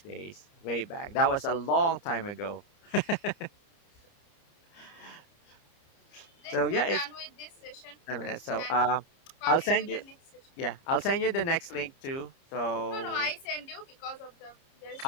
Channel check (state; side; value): late; right; 30 ms